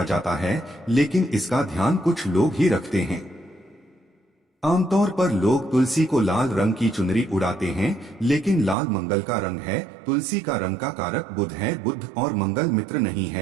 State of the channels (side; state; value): left; drops out; at 8.8 s